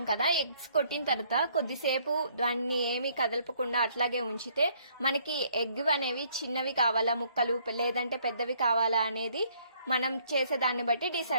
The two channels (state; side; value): inverted; both; correlation -0.64